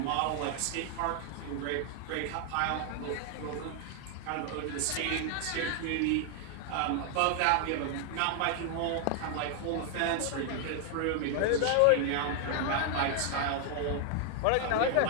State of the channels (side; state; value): both; different; correlation 0.00